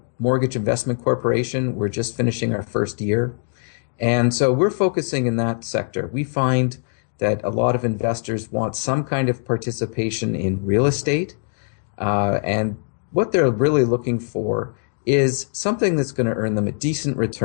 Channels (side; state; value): right; silent; digital silence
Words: mortgage investment corporation. We're just finishing our first year. And so we're focusing in that sector. We find that a lot of investors want some kind of participation in real estate. And what they're really looking for is something that's going to earn them a decent